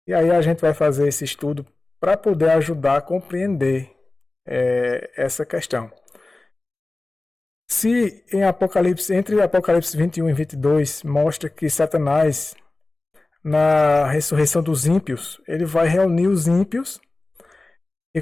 E aí a gente vai fazer esse estudo para poder ajudar a compreender essa questão. Se em Apocalipse, entre Apocalipse 21 e 22, mostra que Satanás, na ressurreição dos ímpios, ele vai reunir os ímpios, e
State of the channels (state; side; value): quieter; right; 3.0 dB